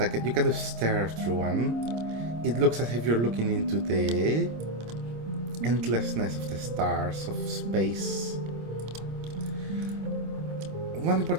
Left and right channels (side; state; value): left; late; 26 ms